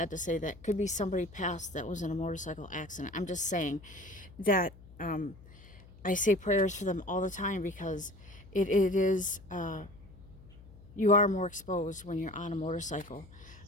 to say that could be somebody passed that was in a motorcycle accident. I'm just saying that, I say prayers for them all the time, because it is, you are more exposed when you're on a motorcycle.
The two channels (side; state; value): left; noise; hum, 20 dB below the sound